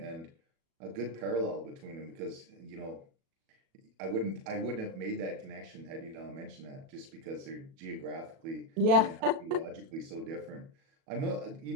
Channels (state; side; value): late; left; 37 ms